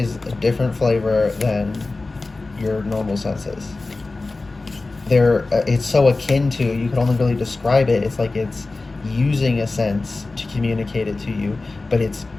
a different flavor than your normal senses. It's so akin to, you can only really describe it. It's like it's using a sense to communicate it to you, but it's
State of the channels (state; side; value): quieter; right; 3.4 dB